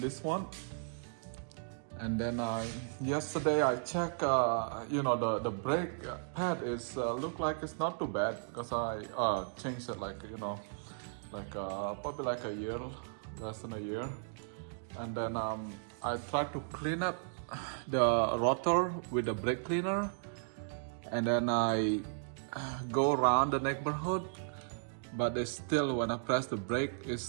one. And then yesterday I checked, the brake pad is look like it's not too bad because I changed it probably like a year, less than a year. And then I tried to clean up the rotor with the brake cleaner, and then I go around the neighborhood, but it's still, when I press the brake, it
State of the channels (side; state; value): left; silent; digital silence